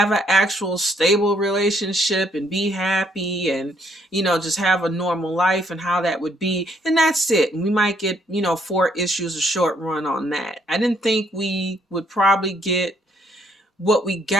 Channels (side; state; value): both; normal; correlation 0.69